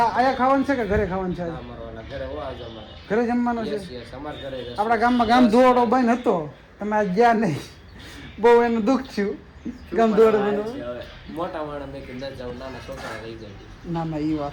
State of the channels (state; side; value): identical; both; correlation 1.00